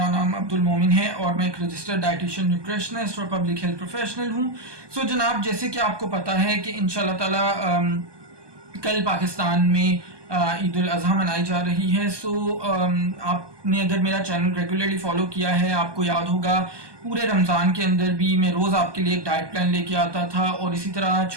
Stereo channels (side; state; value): left; late; 1.2 ms